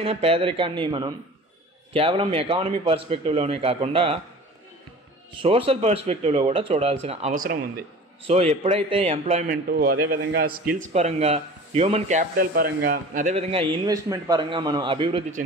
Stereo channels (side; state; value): both; normal; correlation 0.41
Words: పేదరికాన్ని మనం కేవలం ఎకానమీ పర్స్పెక్టివ్లోనే కాకుండా సోషల్ పర్స్పెక్టివ్లో కూడా చూడాల్సిన అవసరం ఉంది. సో ఎప్పుడైతే ఎంప్లాయ్మెంటు, అదేవిధంగా స్కిల్స్ పరంగా, హ్యూమన్ క్యాపిటల్ పరంగా, అదేవిధంగా ఇన్వెస్ట్మెంట్ పరంగా మనం అభివృద్ధి